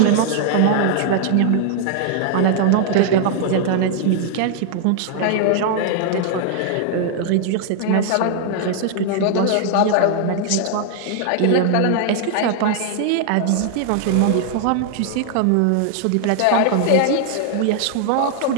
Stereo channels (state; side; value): different; both; correlation 0.00